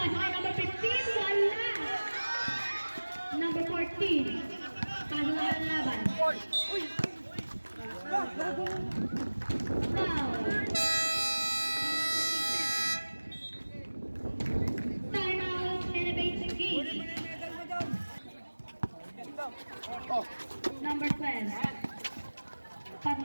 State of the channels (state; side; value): inverted; both; correlation -1.00